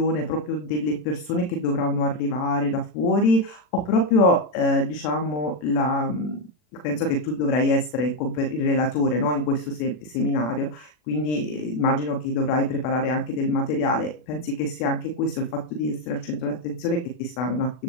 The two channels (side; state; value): right; late; 40 ms